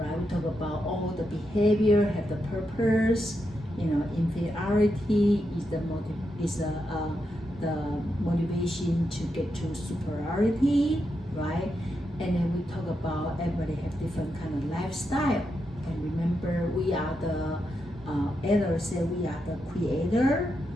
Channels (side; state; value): both; normal; correlation 0.84